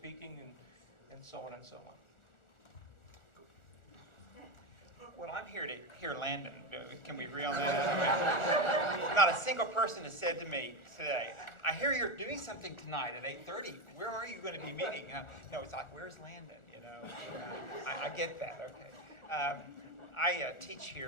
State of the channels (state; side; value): late; right; 1.4 ms